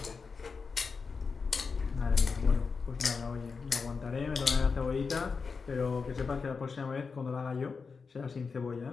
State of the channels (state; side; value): quieter; right; 5.0 dB